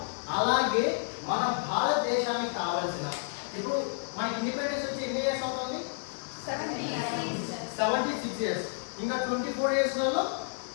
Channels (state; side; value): silent; right; digital silence